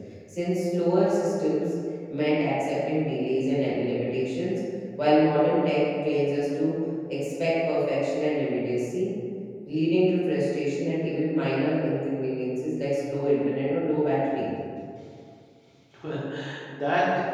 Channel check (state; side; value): identical; both; correlation 1.00